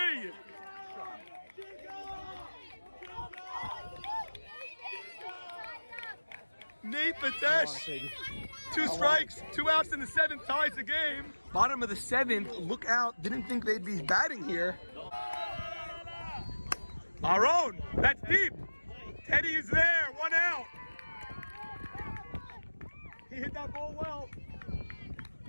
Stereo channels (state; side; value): inverted; both; correlation -1.00